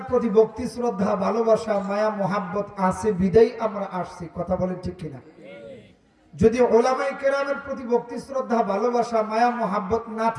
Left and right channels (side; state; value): both; identical; correlation 1.00